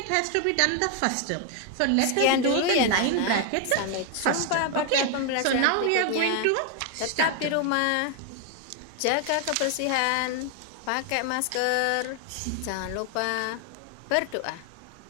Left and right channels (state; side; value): different; both; correlation 0.01